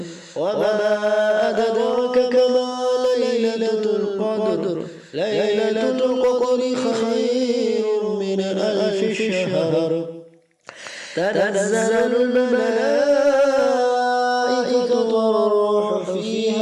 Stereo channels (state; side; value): identical; both; correlation 1.00